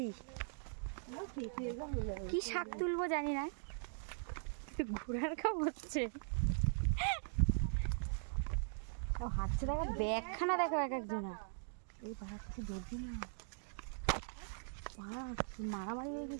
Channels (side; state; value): left; silent; digital silence